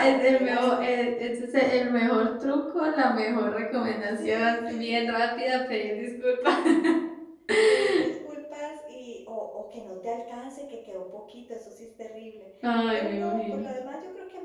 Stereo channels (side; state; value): both; identical; correlation 1.00